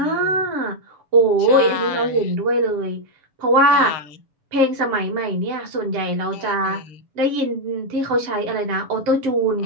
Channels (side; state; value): left; late; 7.1 ms